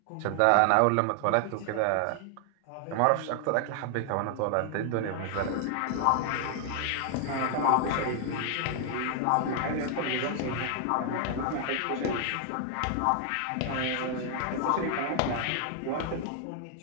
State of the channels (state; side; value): different; both; correlation 0.00